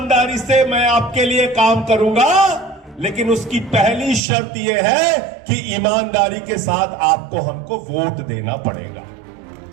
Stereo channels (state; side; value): drops out; left; at 4.2 s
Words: से मैं आपके लिए काम करूंगा, लेकिन उसकी पहली शर्त यह है कि ईमानदारी के साथ आपको हमको वोट देना पड़ेगा।